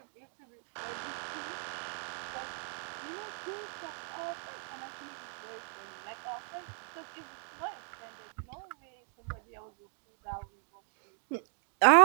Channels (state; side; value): silent; left; 54 dB below the other